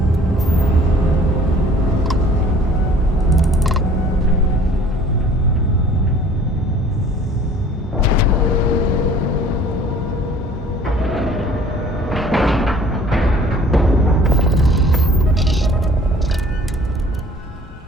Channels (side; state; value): both; normal; correlation 0.51